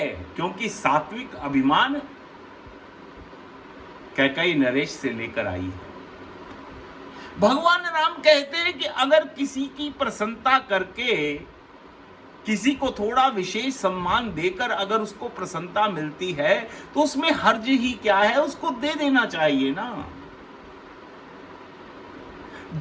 क्योंकि सात्विक अभिमान कैकेयी नरेश से लेकर आई है। भगवान राम कहते हैं कि अगर किसी की प्रसन्नता करके, किसी को थोड़ा विशेष सम्मान देकर अगर उसको प्रसन्नता मिलती है तो उसमें हर्ज ही क्या है, उसको दे देना चाहिए ना।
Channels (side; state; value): both; identical; correlation 1.00